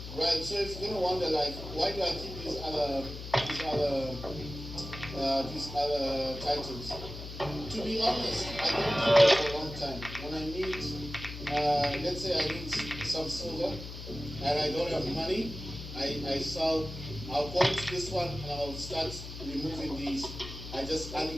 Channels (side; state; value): left; noise; hum, 10 dB below the sound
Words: Right, so if you're gonna wonder, like, why do I keep these other titles? To be honest, I don't keep them for a long time. When I need, let's say I need some silver, and I don't have money, I sell. I'll go into this one and I'll start removing these. I just